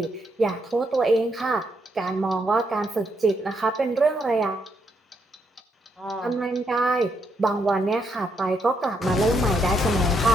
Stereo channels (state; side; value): normal; both; correlation 0.77